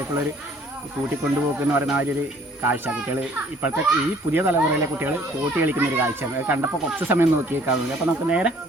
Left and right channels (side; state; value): both; normal; correlation 0.57